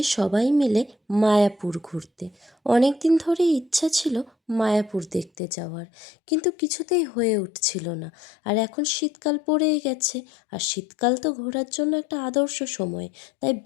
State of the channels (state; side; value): drops out; right; at 5.3 s